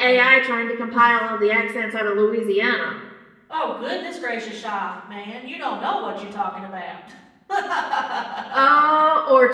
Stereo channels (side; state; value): both; identical; correlation 1.00